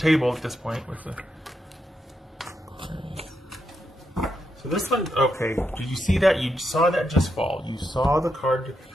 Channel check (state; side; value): normal; both; correlation 0.82